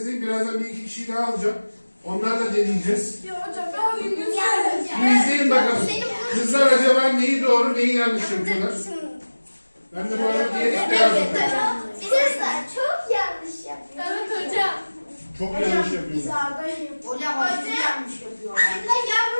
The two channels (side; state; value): both; inverted; correlation -1.00